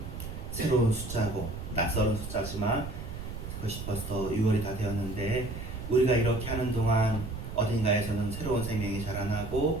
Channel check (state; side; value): noise; right; rumble, 8 dB below the sound